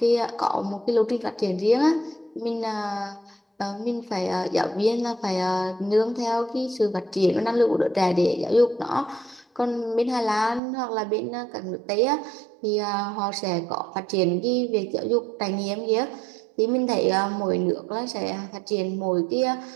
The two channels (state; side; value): drops out; left; at 10.6 s